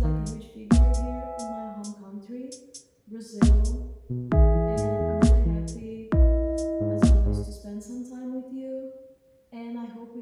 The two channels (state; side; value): identical; both; correlation 1.00